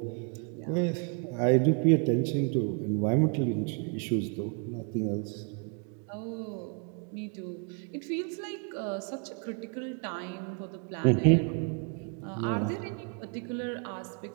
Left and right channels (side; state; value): left; quieter; 37.0 dB